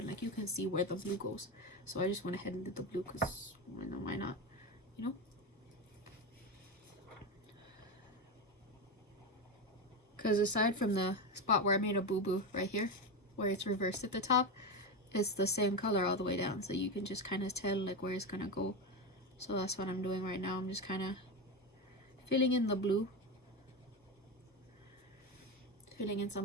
like, you can see where the blue goes. So I just went ahead and did the blue, because why not, you know? Because aside from the spot where I made a boo-boo right here, where it's reversed at the top, it's the same color all the way down. So you can just kind of tell like where it's going to go. So that's what I'm doing right now. I'm just kind of filling in the blue. Filling in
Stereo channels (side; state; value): both; normal; correlation 0.16